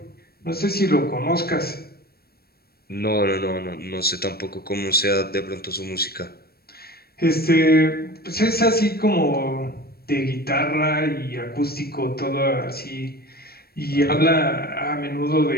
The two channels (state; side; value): late; right; 0.45 ms